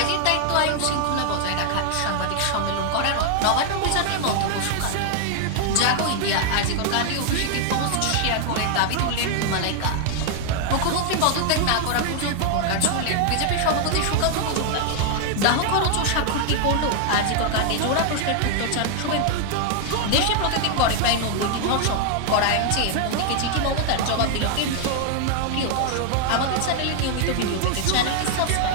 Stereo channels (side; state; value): both; different; correlation 0.00